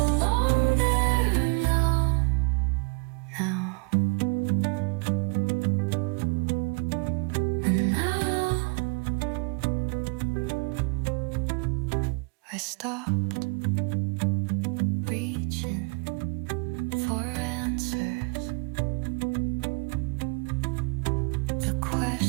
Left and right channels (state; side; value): quieter; left; 31.7 dB